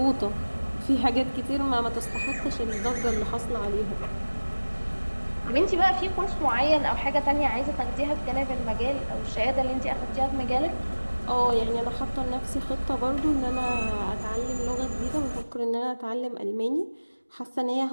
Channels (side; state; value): both; inverted; correlation -1.00